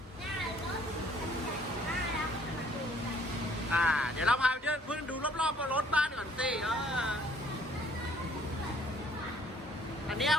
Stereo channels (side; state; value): both; normal; correlation 0.60